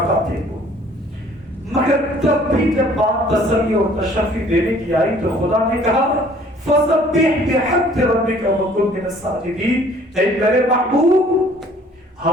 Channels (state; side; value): normal; both; correlation 0.56